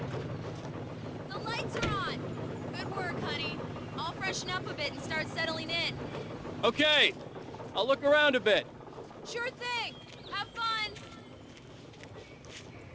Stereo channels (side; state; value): both; identical; correlation 1.00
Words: The lights are on! Good work, honey. I'll freshen up a bit and start settling in. Okay, I'll look around a bit. Sure thing! Have fun!